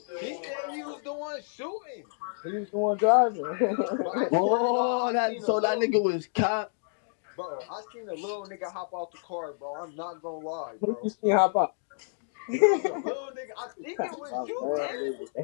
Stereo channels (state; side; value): silent; right; digital silence